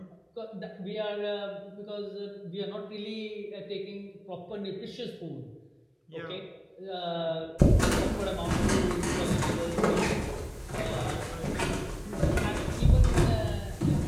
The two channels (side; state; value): both; identical; correlation 1.00